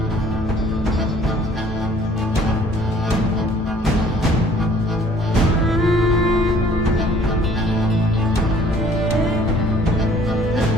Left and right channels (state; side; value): normal; both; correlation 0.56